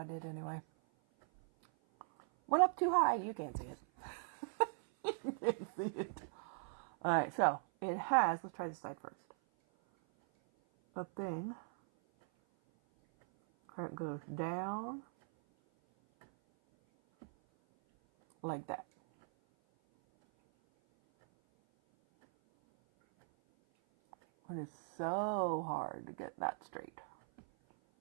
did anyway. Went up too high, you can't see it. You can't see it. Alright, so it has, let's try this side first. A thing. It goes down. Like that. It is so hard to get that straight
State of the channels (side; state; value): left; silent; 52 dB below the other